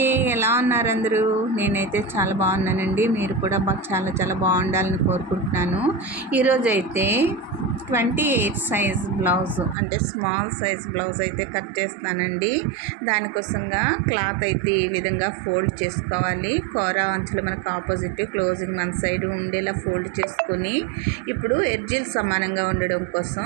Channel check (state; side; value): drops out; left; at 9.8 s